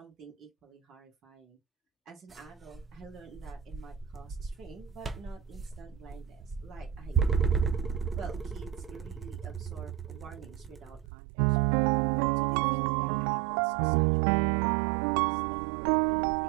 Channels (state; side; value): drops out; left; at 11.1 s